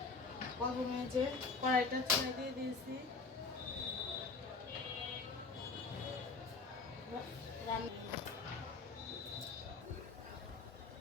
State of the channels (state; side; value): quieter; right; 4.3 dB